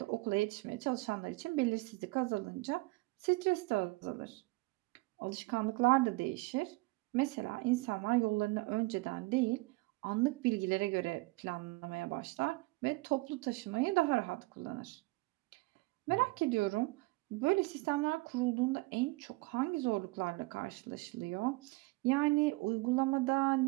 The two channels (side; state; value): left; quieter; 23.6 dB